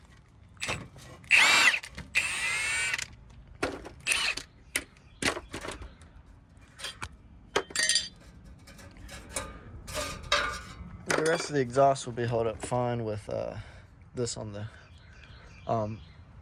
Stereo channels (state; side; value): identical; both; correlation 1.00